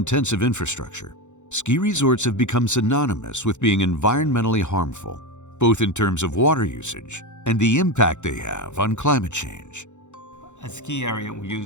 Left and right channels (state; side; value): late; right; 0.84 ms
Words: infrastructure, ski resorts have become synonymous with being environmentally harmful, both in terms of water usage and the impact they have on climate change. A ski area will